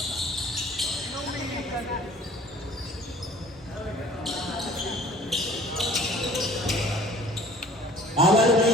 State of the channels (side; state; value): both; normal; correlation 0.50